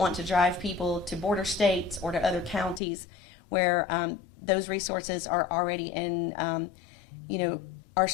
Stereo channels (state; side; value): drops out; right; at 2.8 s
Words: to drive people to border states or to other counties where those resources are already are